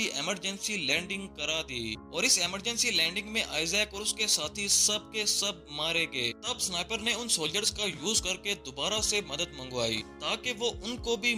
इमरजेंसी लैंडिंग करा दी। और इस इमरजेंसी लैंडिंग में आइजैक और उसके साथी सब के सब मारे गए। तब स्नाइपर ने उन सोल्जर्स का यूज करके दोबारा से मदद मंगवाई ताकि वो उनको भी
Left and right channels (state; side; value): identical; both; correlation 1.00